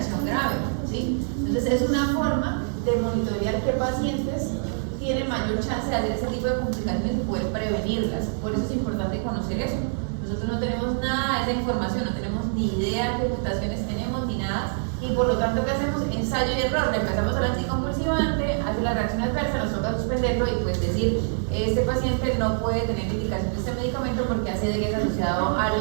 grave, ¿sí? Entonces es una forma de monitorear qué pacientes tienen mayor chance de hacer ese tipo de complicaciones y poder prevenirlas. Por eso es importante conocer eso. Nosotros no tenemos nada de esa información, no tenemos ni idea qué mutaciones tenemos ni nada, y por lo tanto, ¿qué hacemos? Ensayo y error. Le empezamos al anticonvulsivante, hace la reacción adversa, nos toca suspenderlo y pues decir, este paciente no puede tener indicación de este medicamento porque hace de que es asociado a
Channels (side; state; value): left; silent; digital silence